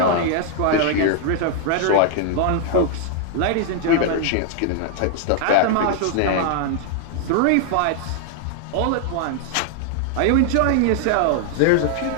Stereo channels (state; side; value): different; both; correlation 0.00